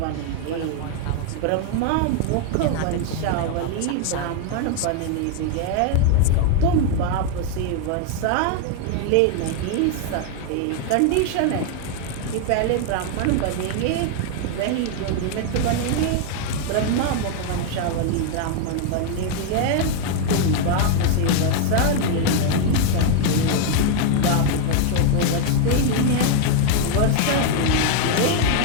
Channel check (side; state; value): both; different; correlation 0.00